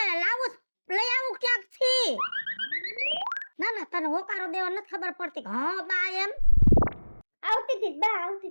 લાવું લઈ આવું ક્યાંક થી? ના ના તને હોકારો દેવા નથી ખબર પડતી. હા બા એમ આવતી હતી બા આવતી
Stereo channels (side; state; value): both; inverted; correlation -1.00